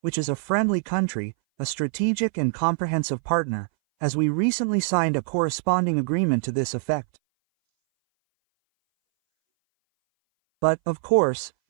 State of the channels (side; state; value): left; silent; 60 dB below the other